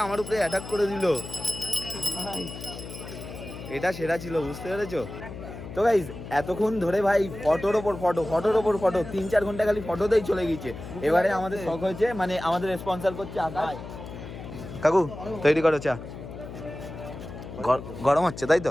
আমার উপরে অ্যাটাক করে দিল। এটা সেরা ছিল, বুঝতে পেরেছো? তো গাইস এতক্ষণ ধরে ভাই ফটোর ওপর ফটো, ফটোর ওপর ফটো, 3-4 ঘন্টা খালি ফটোতেই চলে গিয়েছে। এবারে আমাদের শখ হয়েছে, মানে আমাদের স্পন্সর করছে আকাশ। কাকু তৈরি করো চা। গরম হচ্ছে তাই তো?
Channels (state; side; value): noise; left; hum, 11 dB below the sound